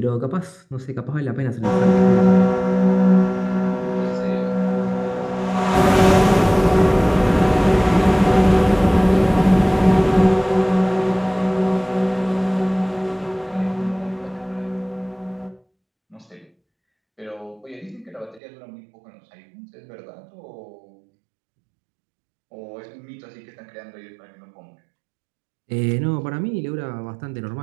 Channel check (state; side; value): drops out; left; at 18.4 s